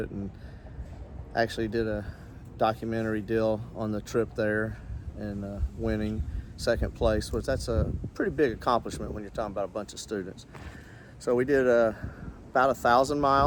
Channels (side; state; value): both; identical; correlation 1.00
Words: and actually did a documentary deal on the trip there, and winning second place, which that's a pretty big accomplishment when you're talking about a bunch of students. So we did about 1,000